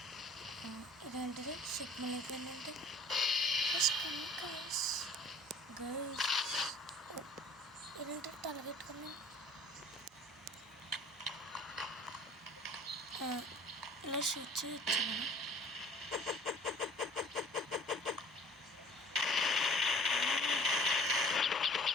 ఇదేంటిది సిగ్నల్ అయిపోయిందంటే గైస్ గైస్ ఇదేంటి తలగెట్టుకున్నాను. ఇలా షూట్ చేయొచ్చు మనం.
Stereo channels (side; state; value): both; normal; correlation 0.51